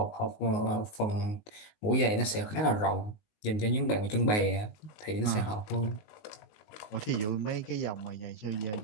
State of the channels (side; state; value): right; late; 19 ms